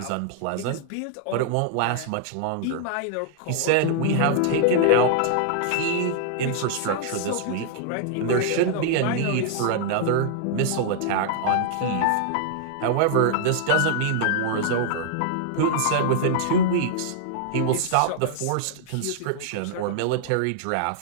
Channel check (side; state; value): both; different; correlation -0.01